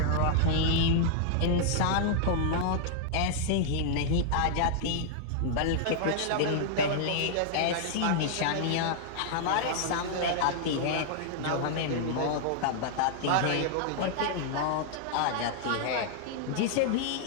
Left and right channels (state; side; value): different; both; correlation -0.01